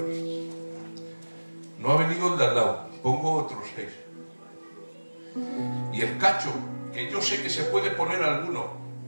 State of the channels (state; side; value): inverted; both; correlation -1.00